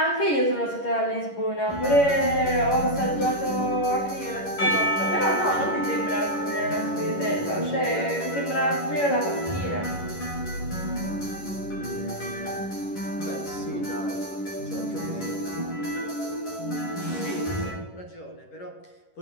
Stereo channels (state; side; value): late; right; 11 ms